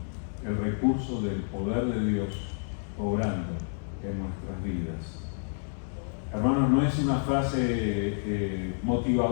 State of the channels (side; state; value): right; silent; 58 dB below the other